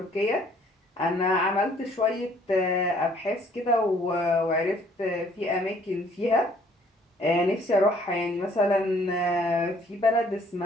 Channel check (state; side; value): normal; both; correlation 0.60